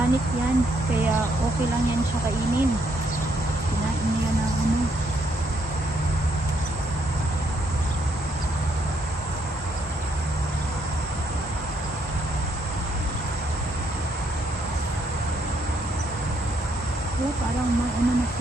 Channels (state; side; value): normal; both; correlation 0.73